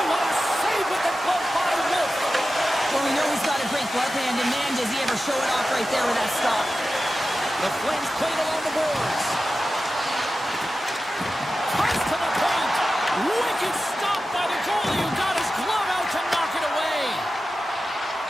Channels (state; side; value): normal; both; correlation 0.93